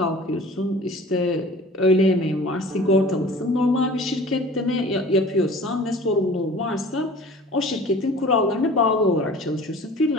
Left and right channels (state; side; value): normal; both; correlation 0.44